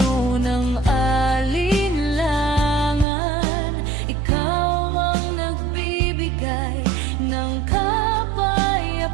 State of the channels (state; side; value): drops out; left; at 3.1 s